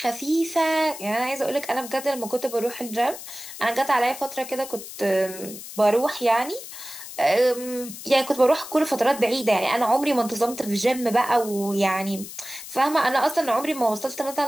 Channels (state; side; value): noise; left; hiss, 12 dB below the sound